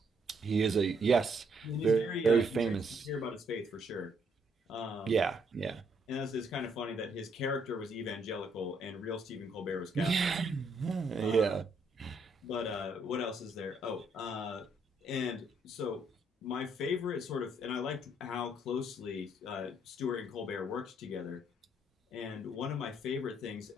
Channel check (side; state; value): both; normal; correlation 0.71